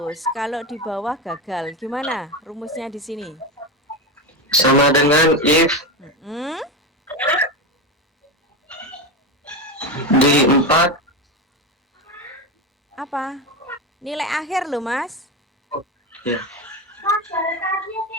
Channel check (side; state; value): both; normal; correlation 0.17